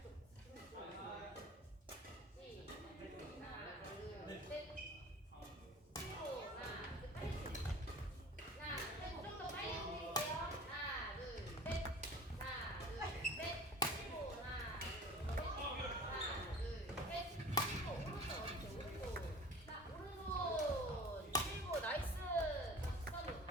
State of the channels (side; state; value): both; normal; correlation 0.42